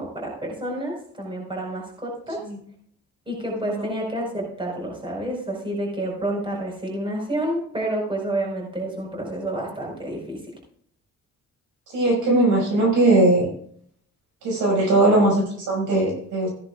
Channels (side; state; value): both; normal; correlation 0.25